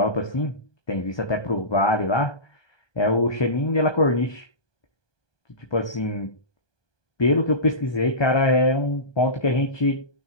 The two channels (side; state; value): right; late; 1.2 ms